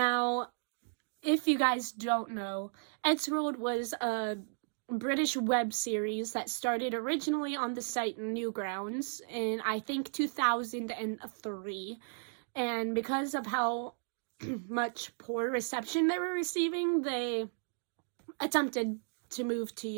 if you guys don't know, Eddsworld was a British web series that started originally on the site Newgrounds in, I think, 2003. And because of how much poor reception they were receiving, they attempted to move to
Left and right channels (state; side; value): silent; left; digital silence